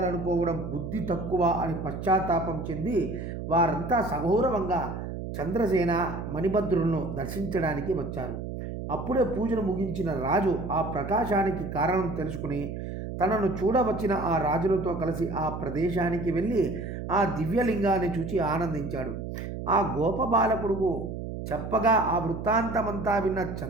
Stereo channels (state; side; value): noise; right; hum, 7 dB below the sound